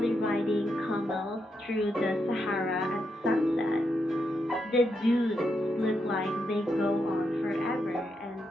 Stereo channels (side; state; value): both; normal; correlation 0.82